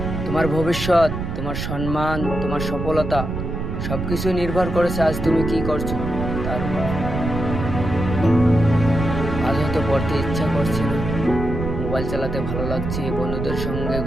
তোমার ভবিষ্যৎ, তোমার সম্মান, তোমার সফলতা সবকিছু নির্ভর করেছে আজ তুমি কি করছো তার উপর। আজ হয়তো পড়তে ইচ্ছা করছে না, মোবাইল চালাতে ভালো লাগছে, বন্ধুদের সঙ্গে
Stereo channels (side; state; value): right; noise; rumble, 4 dB below the sound